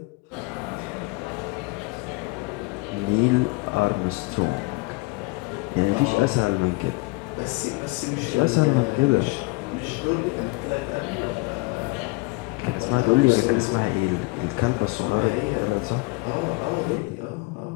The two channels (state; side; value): quieter; right; 25.6 dB